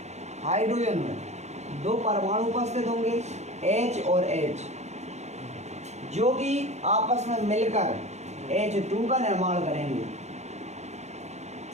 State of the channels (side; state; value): left; late; 0.32 ms